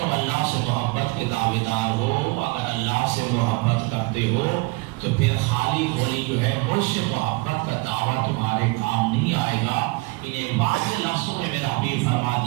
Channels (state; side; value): quieter; left; 25.0 dB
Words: اللہ سے محبت کے دعویدار ہو، اگر اللہ سے محبت کرتے ہو تو پھر خالی ہولی جو ہے مجھ سے محبت کا دعویٰ تمہارے کام نہیں آئے گا. انہیں واضح لفظوں میں میرا حبیب فرما